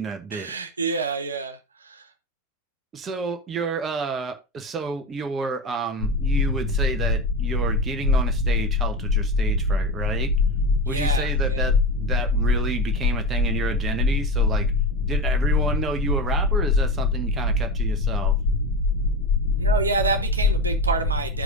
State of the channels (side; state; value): both; normal; correlation 0.21